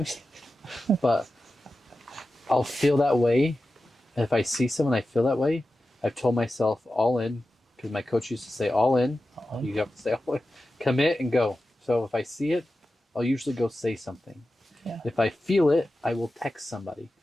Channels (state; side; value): normal; both; correlation 0.93